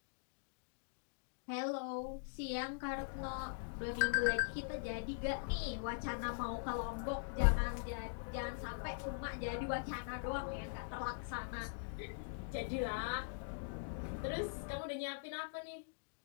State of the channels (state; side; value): silent; right; digital silence